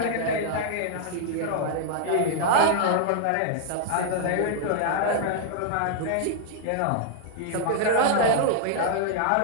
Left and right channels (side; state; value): both; different; correlation -0.01